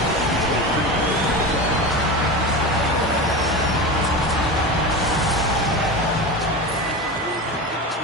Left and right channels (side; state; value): both; normal; correlation 0.25